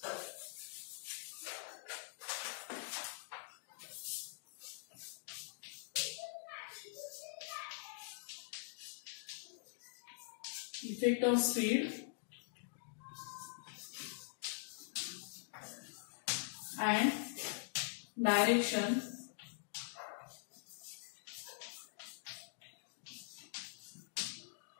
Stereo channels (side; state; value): right; silent; digital silence